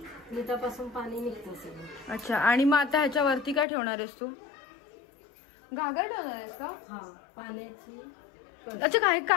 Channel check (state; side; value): drops out; right; at 3.7 s